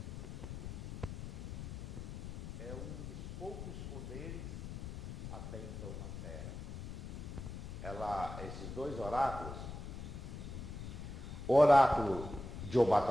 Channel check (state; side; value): noise; left; rumble, 8 dB below the sound